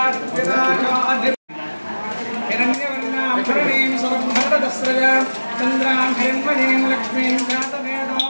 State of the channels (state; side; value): inverted; both; correlation -1.00